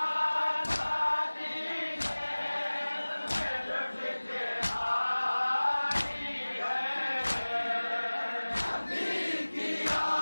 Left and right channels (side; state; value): both; inverted; correlation -1.00